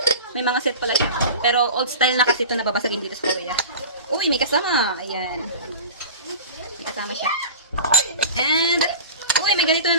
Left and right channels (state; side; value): inverted; both; correlation -0.33